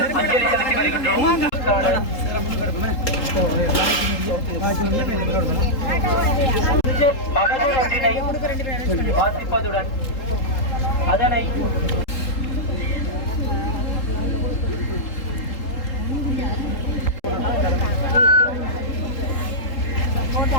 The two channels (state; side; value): late; right; 3.8 ms